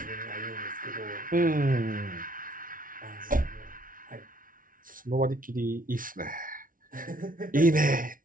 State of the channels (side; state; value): left; late; 0.39 ms